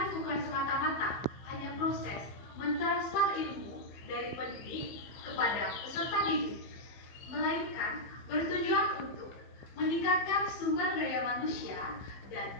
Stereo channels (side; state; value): right; late; 15 ms